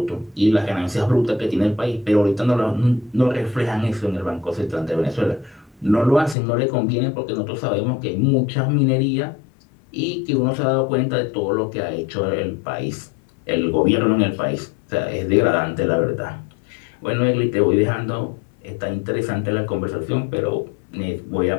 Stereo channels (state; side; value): drops out; right; at 6.4 s